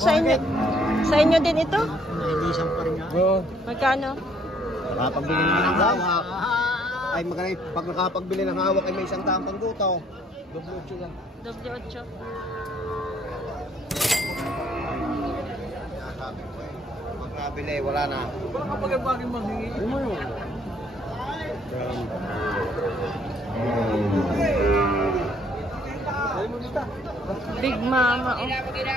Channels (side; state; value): both; normal; correlation 0.65